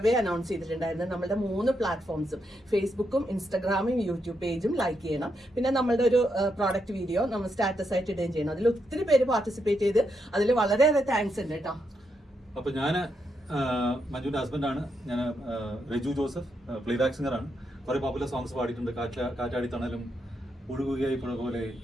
announce ചെയ്തിട്ടുണ്ടായിരുന്നു. നമ്മുടെ 3 പ്ലാറ്റ്ഫോംസും ഫേസ്ബുക്കും ഇൻസ്റ്റാഗ്രാമും യൂട്യൂബ് പേജും ലൈക്ക് ചെയ്യണം. പിന്നെ നമ്മളുടെ ഒരു പ്രോഡക്റ്റ് വീഡിയോ നമ്മൾ സ്റ്റാറ്റസ് ആയിട്ട് ഇടുകയും ചെയ്യണം. അതിൽ ഒത്തിരി പേര് പാർട്ടിസിപ്പേറ്റ് ചെയ്ത് അതിൽ വളരെയേറെ താങ്ക്സ് ഉണ്ട് കേട്ടോ. അപ്പൊ ഞാൻ മഞ്ജുവിന്റെ ഹസ്ബൻഡാണ്. ഞാൻ രജു ജോസഫ്, പ്ലേബാക്ക് സിംഗറാണ്. കുറെ പോപ്പുലർ സോങ്സ് പാടിയിട്ടുണ്ട്. കാറ്റാടി തണലും, ഒഴുകുകയായി പുഴ പോലെ,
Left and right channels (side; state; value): both; normal; correlation 0.81